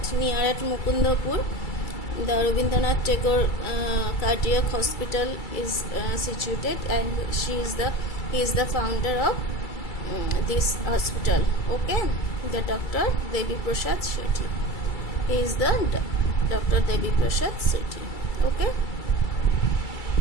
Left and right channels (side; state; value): right; late; 2.3 ms